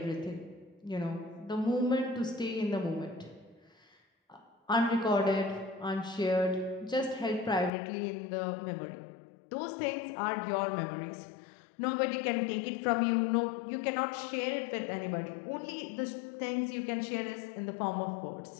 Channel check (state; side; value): drops out; right; at 7.7 s